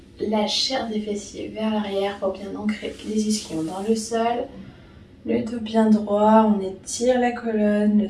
la chair des fessiers vers l'arrière pour bien ancrer les ischions dans le sol. Le dos bien droit, on étire la colonne, le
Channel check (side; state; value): both; identical; correlation 1.00